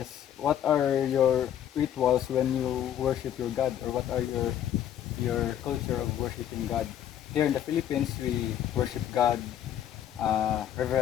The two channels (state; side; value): quieter; right; 10.5 dB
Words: what are your rituals when you worship your God, or what are your culture of worshiping God? Here in the Philippines, we worship God